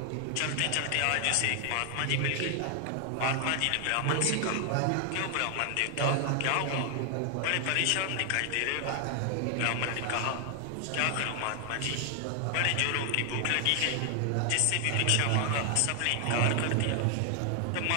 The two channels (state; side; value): different; both; correlation 0.00